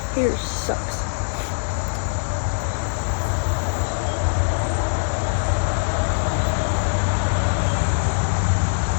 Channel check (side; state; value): right; silent; 64 dB below the other